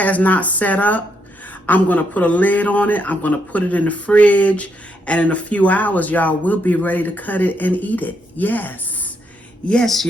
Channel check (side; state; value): both; normal; correlation 0.77